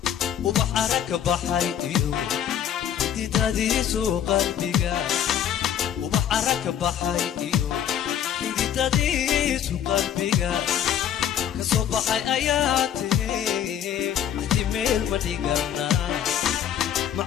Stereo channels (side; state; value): right; quieter; 9.8 dB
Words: وبحرك بحيديو تديسو قلبيغا وبحرك بحيديو تديسو قلبيغا كصبحي اياتي احتمال مديغنا